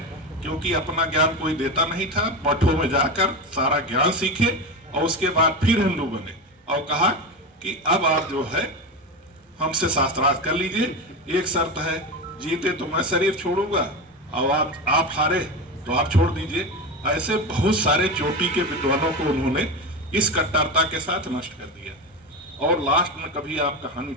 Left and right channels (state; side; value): normal; both; correlation 0.20